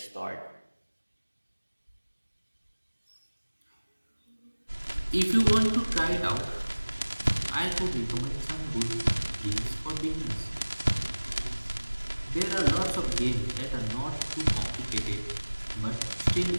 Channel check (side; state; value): both; inverted; correlation -1.00